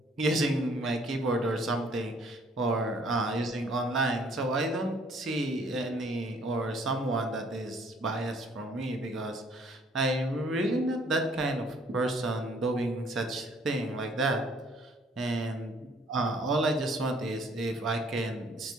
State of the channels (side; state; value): both; normal; correlation 0.61